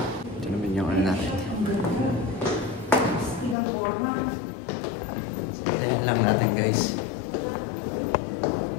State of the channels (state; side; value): drops out; right; at 3.6 s